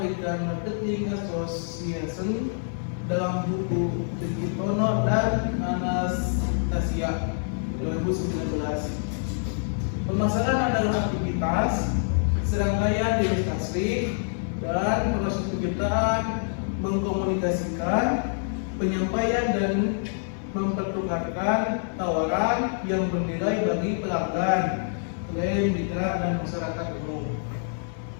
Marketing Association dalam buku Digitono dan Anastasia 2019, pemasaran adalah aktivitas serangkaian investasi dan proses penciptaan, mengkomunikasikan, penyampaian dan mempertukarkan tawaran yang bernilai bagi pelanggan, klien, mitra, dan masyarakat umum.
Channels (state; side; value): silent; right; digital silence